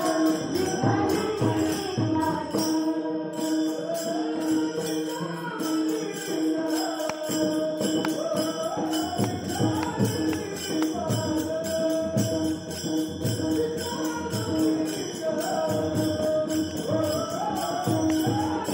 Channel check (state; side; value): identical; both; correlation 1.00